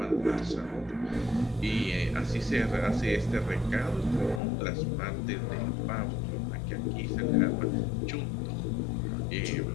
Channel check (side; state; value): right; drops out; at 4.4 s